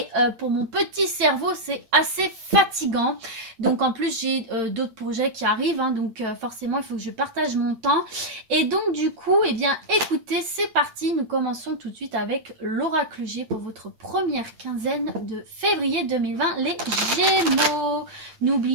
pour mon petit cerveau c'est assez fatigant. Donc en plus j'ai d'autres projets qui arrivent, donc forcément il faut que je partage mon temps. Et donc du coup, eh bien écoutez, c'est parti, nous commençons tout de suite avec l'oracle G pour votre première quinzaine de février 2020, les Gémeaux.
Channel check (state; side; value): late; left; 9.0 ms